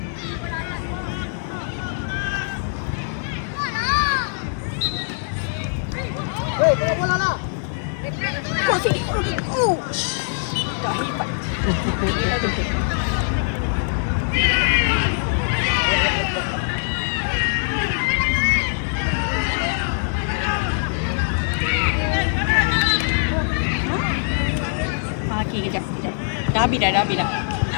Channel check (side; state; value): right; silent; 64 dB below the other